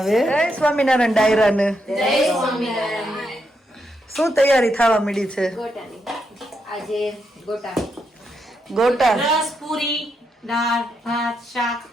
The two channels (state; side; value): normal; both; correlation 0.81